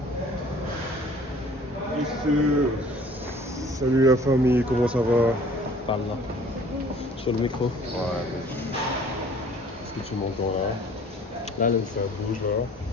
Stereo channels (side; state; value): both; normal; correlation 0.52